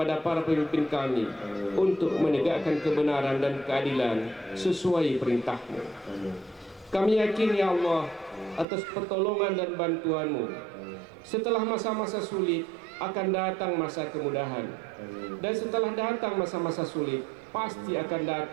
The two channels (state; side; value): drops out; left; at 8.7 s